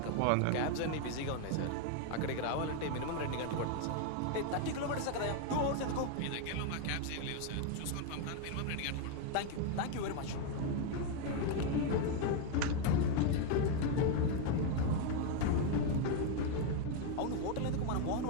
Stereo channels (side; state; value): both; different; correlation 0.01